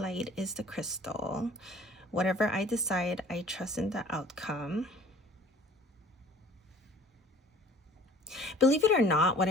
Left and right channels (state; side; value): normal; both; correlation 0.50